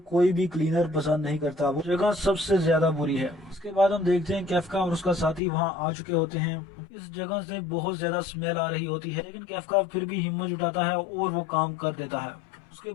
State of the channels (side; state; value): right; drops out; at 5.4 s